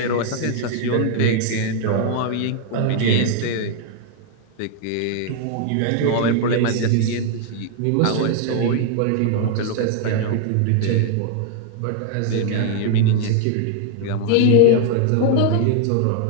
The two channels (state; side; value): different; both; correlation 0.00